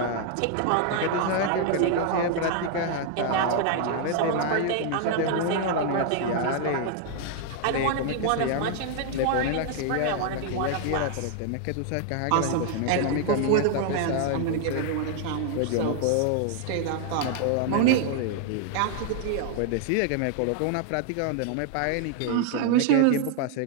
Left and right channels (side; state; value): both; different; correlation 0.00